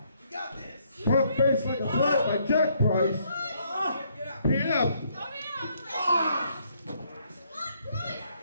Front face like a flat by Jack Price. PF.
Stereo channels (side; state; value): both; inverted; correlation -0.70